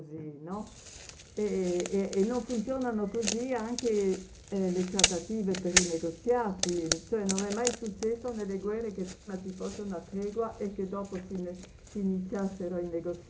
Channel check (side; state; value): both; identical; correlation 1.00